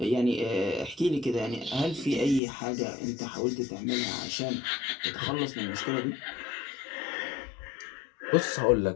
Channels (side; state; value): right; drops out; at 2.4 s